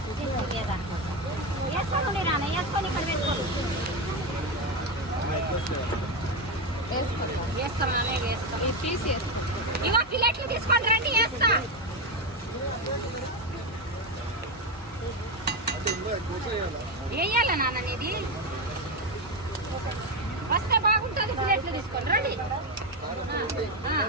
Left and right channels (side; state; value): both; normal; correlation 0.11